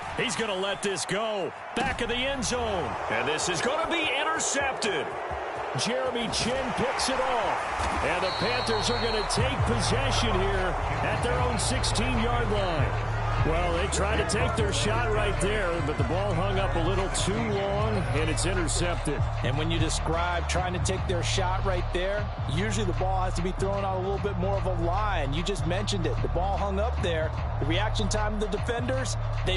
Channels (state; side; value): identical; both; correlation 1.00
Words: He's going to let this go. Back of the end zone. And this is going to be intercepted. Jeremy Chin picks it off. And the Panthers are going to take possession here at their own 16-yard line. Well, they tried to take their shot right there, but the ball hung up a little too long, and it's intercepted. And when you describe trying to take their shot right there, usually the ball has to be thrown out a little bit more of a line. You just mentioned it. The ball hung up there. The reaction time of the defenders,